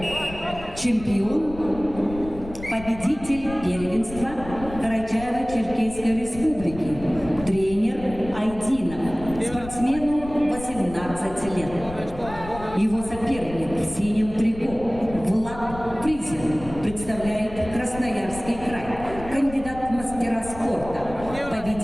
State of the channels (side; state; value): left; noise; rumble, 13 dB below the sound